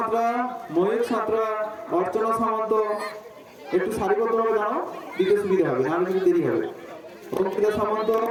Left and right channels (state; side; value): identical; both; correlation 1.00